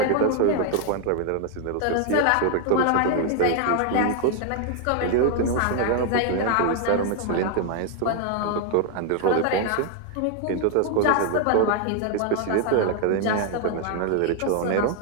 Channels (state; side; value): different; both; correlation 0.00